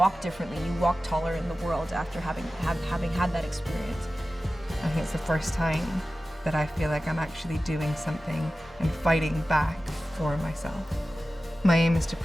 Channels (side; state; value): both; normal; correlation 0.95